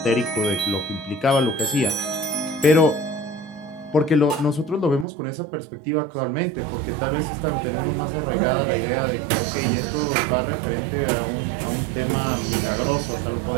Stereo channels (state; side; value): drops out; left; at 5.1 s